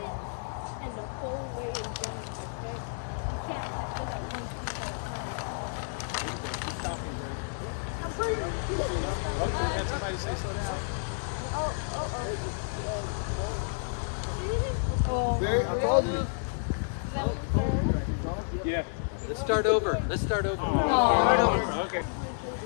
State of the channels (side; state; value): right; silent; digital silence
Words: And the whole way in general, okay? You can't just look at one piece at a time. There you go. Keep talking, Gray. I'm pretty. Oh, had somebody say slow down. Oh, Barry, I called you. Yeah. Let's start over. Let's start over. Okay.